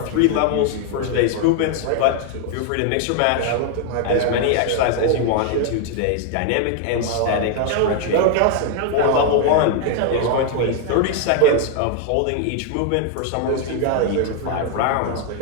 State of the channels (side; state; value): both; different; correlation 0.00